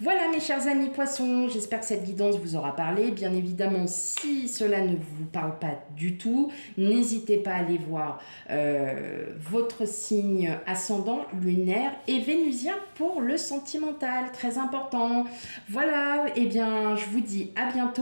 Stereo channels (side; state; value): both; inverted; correlation -1.00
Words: mes chers amis poissons, j'espère que cette guidance vous aura parlé. Bien évidemment, si cela ne vous parle pas du tout, n'hésitez pas à aller voir votre signe ascendant, lunaire et vénusien pour le sentimental, très important. Voilà, et bien je vous dis à